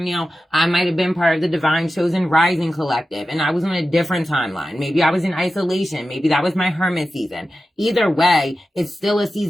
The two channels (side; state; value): both; normal; correlation 0.93